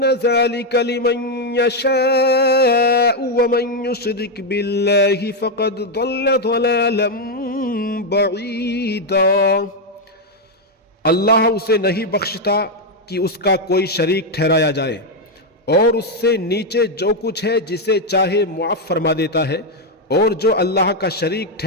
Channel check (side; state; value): both; normal; correlation 0.03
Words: ذلك لمن یشاء ومن یشرک باللہ فقد ضل ضلالا بعیدا. اللہ اسے نہیں بخشتا کہ اس کا کوئی شریک ٹھہرایا جائے، اور اس سے نیچے جو کچھ ہے جسے چاہے معاف فرما دیتا ہے، اور جو اللہ کا شریک